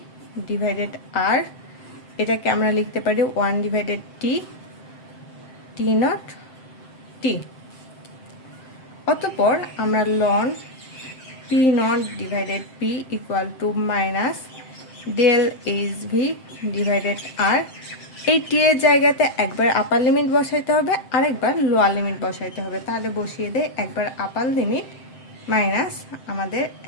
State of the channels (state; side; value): late; right; 7.7 ms